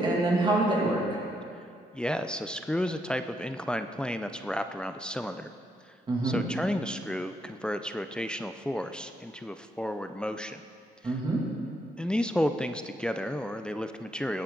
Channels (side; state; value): both; normal; correlation 0.77